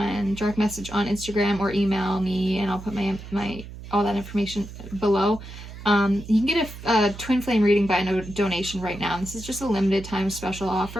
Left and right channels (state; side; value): noise; right; hum, 13 dB below the sound